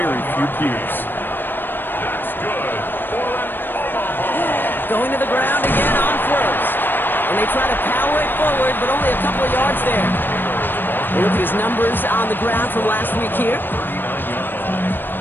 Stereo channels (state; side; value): late; right; 0.095 ms